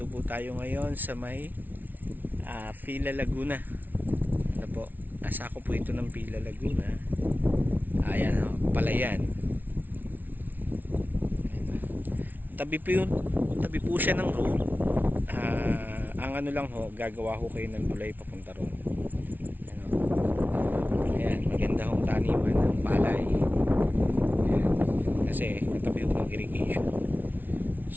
po tayo ngayon sa may Pila Laguna. Ano po, nasa ako po ito ng Pila Laguna. Ayan o, Palayan. Tabi po siya ng road. Ang ano lang ho, gagawa ho kayo ng tulay papunta ron. Ano? Ayan, maganda hong taniman ng palay. Ayan, kasi katabi ho ng irrigation.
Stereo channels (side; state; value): left; late; 0.085 ms